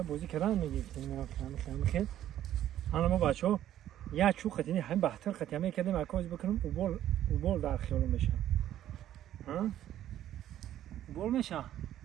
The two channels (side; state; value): left; quieter; 12.0 dB